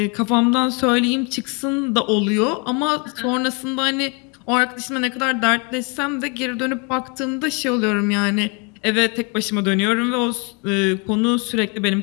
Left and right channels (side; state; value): right; quieter; 33.1 dB